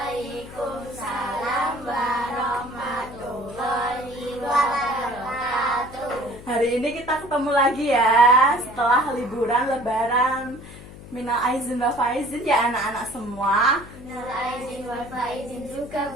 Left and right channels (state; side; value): noise; left; hum, 16 dB below the sound